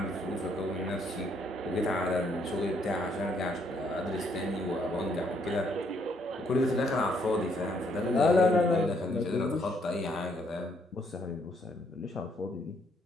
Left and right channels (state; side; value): normal; both; correlation 0.70